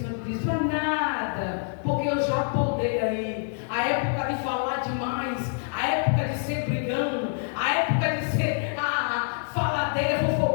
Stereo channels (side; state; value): right; silent; 60 dB below the other